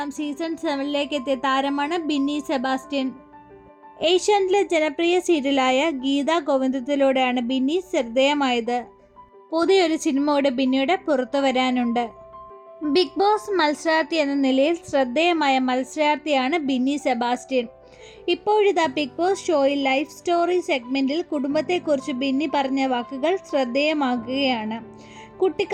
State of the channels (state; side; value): identical; both; correlation 1.00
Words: season 7 എത്തിയ താരമാണ് ബിന്നി സെബാസ്റ്റ്യൻ. ഏഷ്യാനെറ്റിലെ ജനപ്രിയ സീരിയലായ ഗീതാ ഗോവിന്ദത്തിലൂടെയാണ് ബിന്നി ശ്രദ്ധേയമായത്. പുതിയൊരു സിനിമയുടെ ബിന്നിയുടെ പുറത്തു വരാനുണ്ട്. ബിഗ് ബോസ് മത്സരാർത്ഥി എന്ന നിലയിൽ ശ്രദ്ധേയമായ മത്സരാർത്ഥിയാണ് ബിന്നി സെബാസ്റ്റ്യൻ. ഇപ്പോഴിതാ ബിഗ് ബോസ് ഷോയിൽ ലൈഫ് സ്റ്റോറി സെഗ്മെന്റിൽ കുടുംബത്തെക്കുറിച്ച് ബിന്നി പറഞ്ഞ വാക്കുകൾ ശ്രദ്ധേയമാകുകയാണ്.